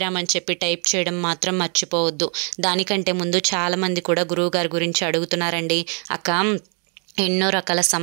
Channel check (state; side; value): quieter; left; 39.8 dB